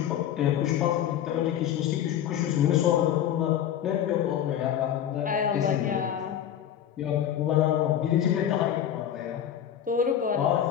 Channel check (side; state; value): right; quieter; 10.2 dB